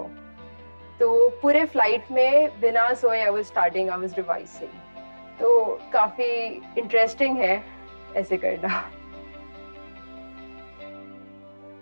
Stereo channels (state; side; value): inverted; both; correlation -1.00